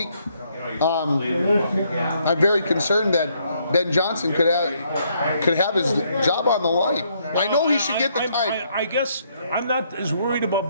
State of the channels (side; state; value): both; inverted; correlation -0.71